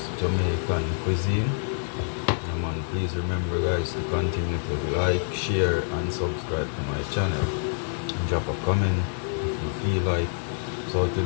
Jamaican Cuisine. Man, please remember guys to continue to like, share and subscribe to my channel. Drop a comment if you feel like. So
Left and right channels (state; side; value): silent; right; digital silence